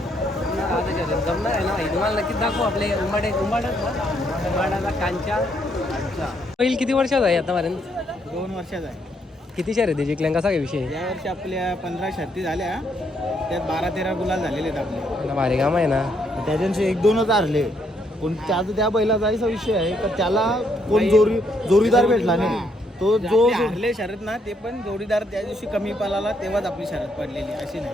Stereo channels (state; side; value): normal; both; correlation 0.73